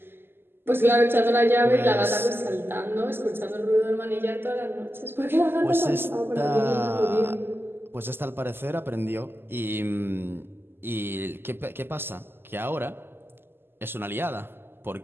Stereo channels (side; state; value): left; late; 0.11 ms